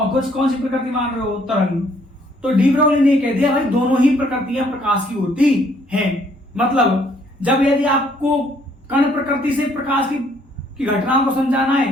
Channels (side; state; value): both; normal; correlation 0.65